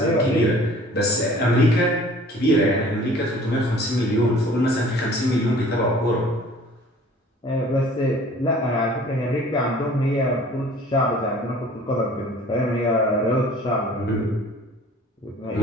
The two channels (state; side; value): normal; both; correlation 0.49